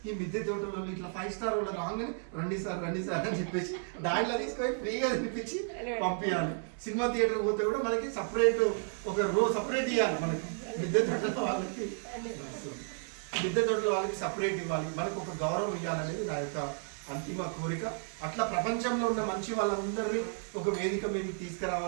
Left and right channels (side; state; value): left; silent; 56 dB below the other